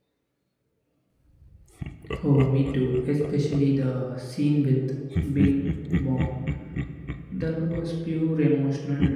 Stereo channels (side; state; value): both; identical; correlation 1.00